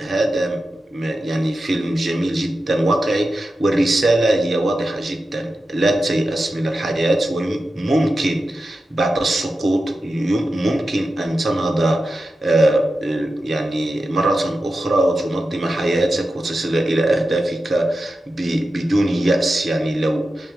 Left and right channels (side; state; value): both; normal; correlation 0.92